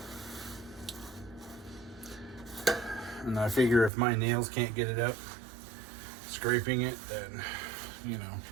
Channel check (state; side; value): drops out; left; at 3.9 s